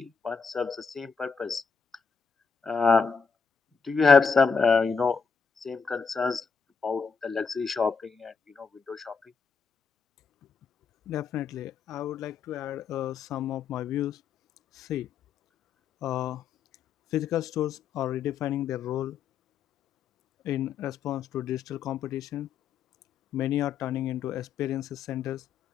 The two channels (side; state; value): right; quieter; 5.6 dB